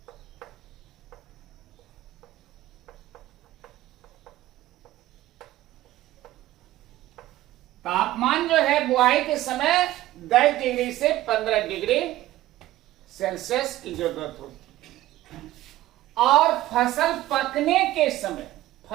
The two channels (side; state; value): left; quieter; 15.7 dB